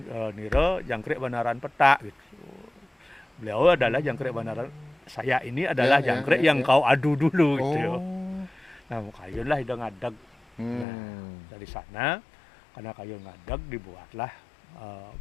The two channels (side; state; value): right; drops out; at 10.9 s